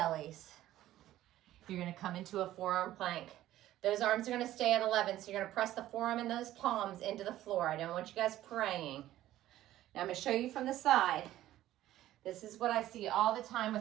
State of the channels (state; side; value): quieter; left; 14.0 dB